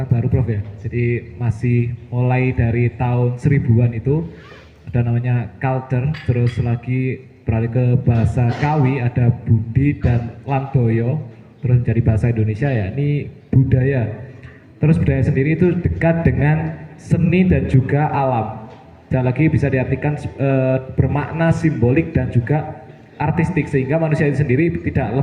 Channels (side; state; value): both; identical; correlation 1.00